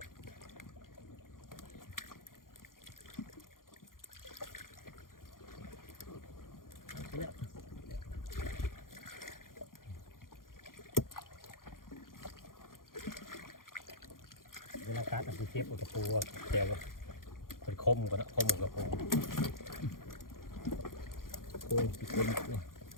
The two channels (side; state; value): right; late; 0.91 ms